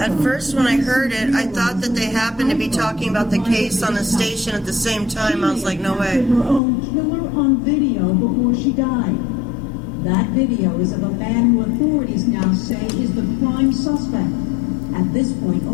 from, first, when I heard it, I thought that they happened to be talking about the case on the station at the same time. I was like, no way. Her own killer on video before she died. That video is of a man who authorities now say is the prime suspect. At this point,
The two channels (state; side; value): drops out; right; at 6.6 s